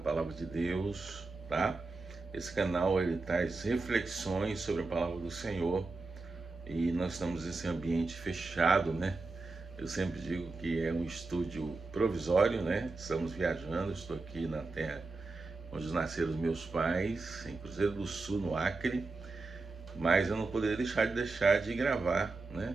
de Deus, tá? Esse canal ele traz reflexões sobre a Palavra do Senhor e nós estamos nesse ambiente fechado, né? Eu sempre digo que é um estúdio provisório, né? Estamos viajando, estou aqui na terra onde nasceram os meus pais, em Cruzeiro do Sul, no Acre, mas eu não poderia deixar de gravar,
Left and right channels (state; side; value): quieter; left; 3.6 dB